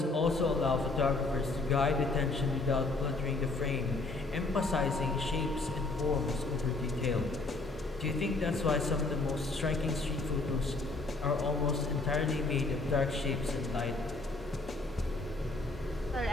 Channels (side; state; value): right; quieter; 3.3 dB